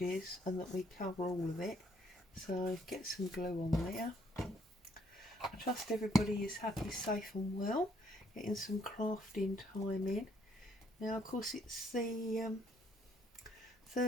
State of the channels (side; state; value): both; normal; correlation 0.67